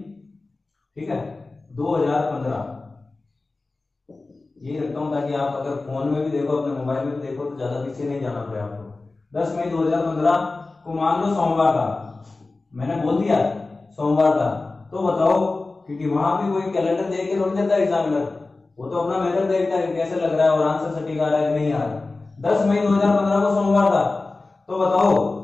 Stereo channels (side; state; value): right; quieter; 3.4 dB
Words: ठीक है, 2015 ये रखता हूं ताकि आप अगर फोन में भी देखो, अपने मोबाइल में भी देखो तो ज्यादा पीछे नहीं जाना पड़े आपको। 10 मई 2015 को मान लो सोमवार था, मैंने बोल दिया सोमवार था, तो बताओ, क्योंकि वहां भी कोई कैलेंडर देख के थोड़ी देता है एग्जामिनर, वो तो अपना मेथड देखता है कैसे लग रहा है और आंसर सटीक आ रहा है कि नहीं आ रहा है। 10 मई 2015 को सोमवार था, तो बताओ